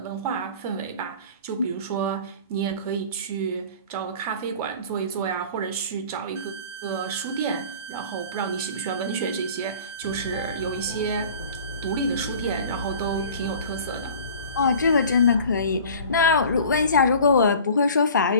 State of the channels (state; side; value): inverted; both; correlation -0.44